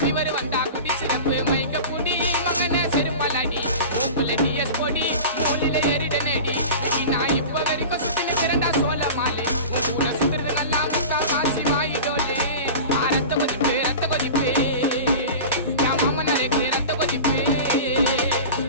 வந்தா குடி சிறப்பு மயக்க குடி மகன செருப்பலாடி உப்புல டிஎஸ் பொடி மூலில ஏறிட நேடி நான் இப்ப வரைக்கும் சுத்தின திறந்தா சோழ மாலை ஊரை சுத்துறது நல்லா முக்கா காசி வாயிடோலே ரத்த கொதிப்பு என் மாமனாருக்கு ரத்த கொதிப்பு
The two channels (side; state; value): both; inverted; correlation -0.33